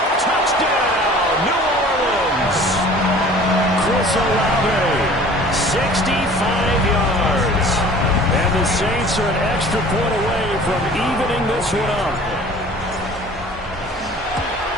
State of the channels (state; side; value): normal; both; correlation 0.47